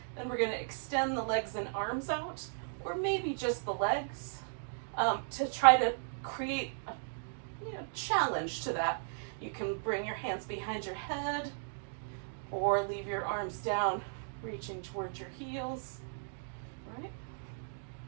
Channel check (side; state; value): left; silent; digital silence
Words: Then we're going to extend the legs and arms out, or maybe just the legs, to try to create a challenge to that. You can bring your hands behind your head, or leave your arms down, reaching towards your heels. Right?